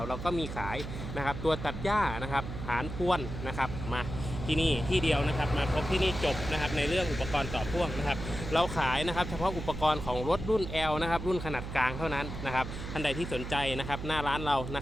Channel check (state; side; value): noise; right; hum, 7 dB below the sound